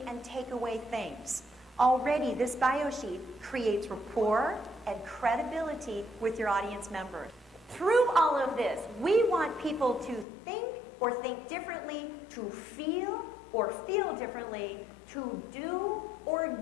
and take away things? Already, this bio sheet creates rapport and credibility with your audience members. Through all of this, we want people to think or think differently, to feel or feel differently, to do or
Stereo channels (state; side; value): drops out; right; at 10.2 s